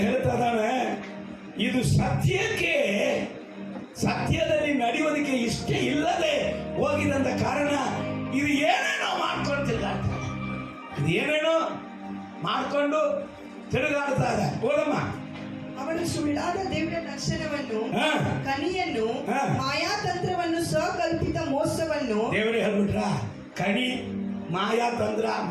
ಹೇಳ್ತಾ ಇದ್ದಾನೆ, ಇದು ಸತ್ಯಕ್ಕೆ, ಸತ್ಯದಲ್ಲಿ ನಡೆಯೋದಕ್ಕೆ ಇಷ್ಟ ಇಲ್ಲದೆ ಹೋಗಿದಂತ ಕಾರಣ ಇದು ಏನೇನೋ ಮಾಡ್ಕೊಳ್ತಿಲ್ಲ. ಇದು ಏನೇನೋ ಮಾಡ್ಕೊಂಡು ತಿರುಗಾಡ್ತಾ ಇದೆ. ಓದಮ್ಮ. ಅವನು ಸುಳ್ಳಾದ ದಿವ್ಯ ದರ್ಶನವನ್ನು, ಹಾ. ಕನಿಯನ್ನು, ಹಾ. ಮಾಯಾತಂತ್ರವನ್ನು, ಸ್ವಕಲ್ಪಿತ ಮೋಸವನ್ನು, ದೇವರೇ ಹೇಳ್ಬಿಟ್ರ, ಕಣಿ, ಮಾಯಾ ತಂತ್ರ,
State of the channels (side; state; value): both; identical; correlation 1.00